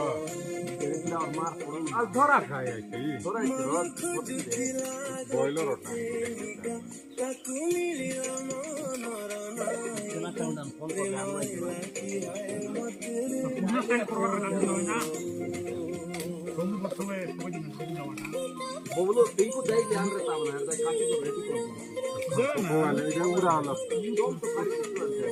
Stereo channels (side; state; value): both; identical; correlation 1.00